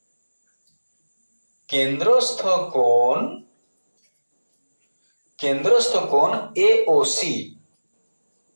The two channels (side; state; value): both; inverted; correlation -1.00